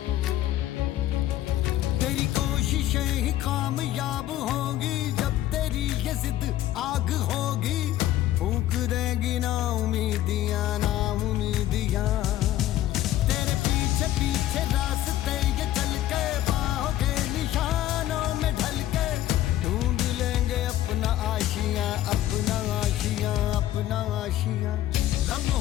तेरी कोशिशें ही कामयाब होंगी जब तेरी ये जिद आग होगी। फूंक देगी ना उम्मीदियां, ना उम्मीदियां। तेरे पीछे पीछे रास्ते ये चल के बाहों के निशानों में ढल के ढूंढ लेंगे अपना आशियां, अपना आशियां, अपना आशियां।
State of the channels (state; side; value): quieter; right; 13.6 dB